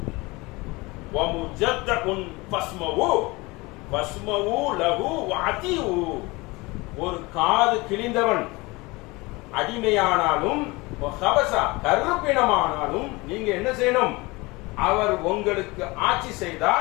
ஒரு காது கிழிந்தவன் அடிமையானாலும் கருப்பினமானாலும் நீங்க என்ன செய்யணும், அவர் உங்களுக்கு ஆட்சி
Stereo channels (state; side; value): quieter; right; 23.6 dB